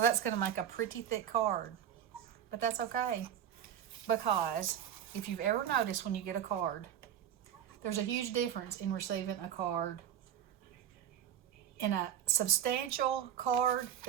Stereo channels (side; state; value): left; quieter; 9.7 dB